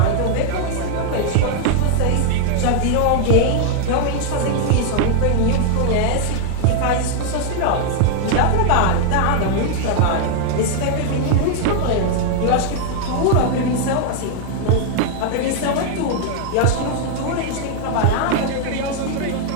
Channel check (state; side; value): different; both; correlation 0.00